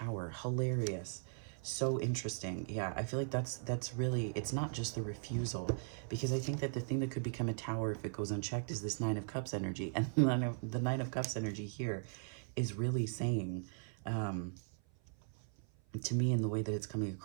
Hilarious. So interesting. Yeah, I feel like that's really, it's not just the refusal, because I think that the thing that could become a Tower if it goes unchecked is this Nine of Cups energy. And the Nine of Cups energy here is really saying, to me, in the way that it's coming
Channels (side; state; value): left; silent; 52 dB below the other